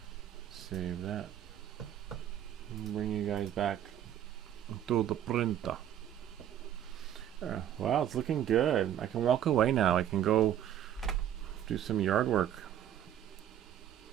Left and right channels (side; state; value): left; quieter; 10.7 dB